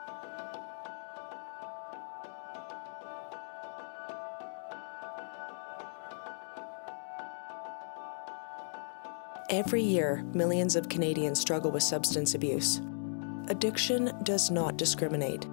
year, millions of Canadians struggle with substance abuse. Addiction does not discriminate.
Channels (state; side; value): silent; right; digital silence